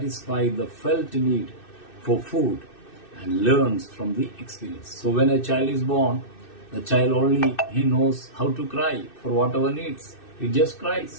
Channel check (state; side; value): late; right; 2.6 ms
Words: the felt need for food and learns from the experience. So when a child is born, the child he knows how to cry for whatever needs. It just